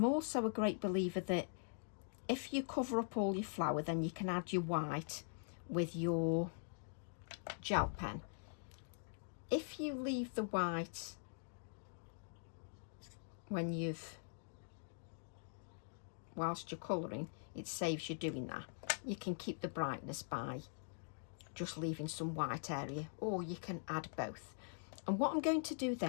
also a great believer that if you cover up all your flower, then you can add your white with your gel pen. If you leave the white whilst you're colouring, it saves you doing that. You can keep the brightness by just leaving some white area, or you can add both. And what I'm going to do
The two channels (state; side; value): silent; right; digital silence